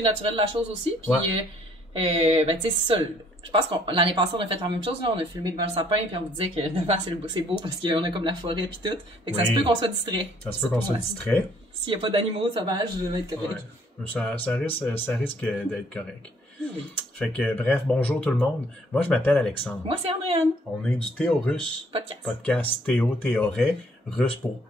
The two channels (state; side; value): normal; both; correlation 0.62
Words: naturel de la chose aussi, puis, Ouais. ben, tu sais, c'est ça. Je pense que l'année passée, on a fait la même chose. Là. On a filmé devant le sapin, puis on vous disait que devant, c'est beau parce qu'on a comme la forêt, puis tout. Fait que ça se peut qu'on soit distrait. Ça se peut qu'on soit distrait. S'il n'y a pas d'animaux sauvages, je vais être correct. Ouais. Ça risque d'être correct. Oui. Fait que, bref, bonjour tout le monde. Moi, je m'appelle Alexandre. Moi, c'est Andréane. On est du Théo-Russe. Podcast Théo, Théoret. Russe pour